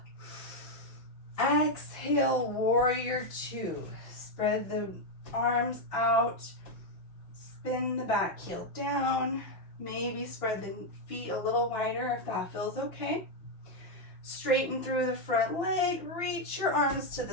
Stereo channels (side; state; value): right; late; 5.8 ms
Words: Exhale, warrior 2. Spread the arms out. Spin the back heel down. Maybe spread the feet a little wider if that feels okay. Straighten through the front leg. Reach your arms to the